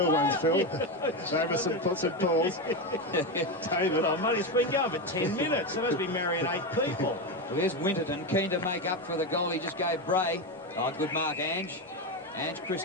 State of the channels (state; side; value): normal; both; correlation 0.14